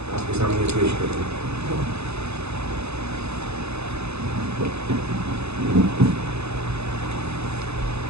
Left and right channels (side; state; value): left; late; 0.80 ms